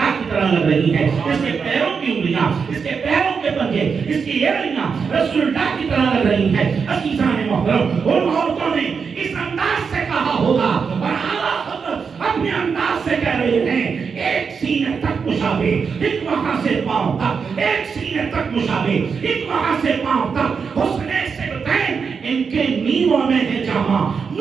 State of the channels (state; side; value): quieter; left; 5.8 dB